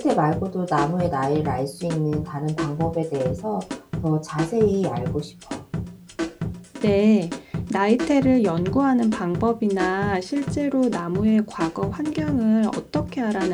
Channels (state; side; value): identical; both; correlation 1.00